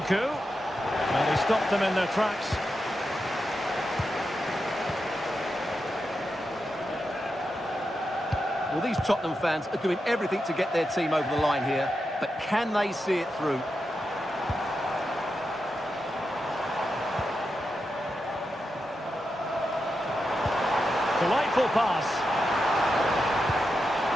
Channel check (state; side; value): normal; both; correlation 0.88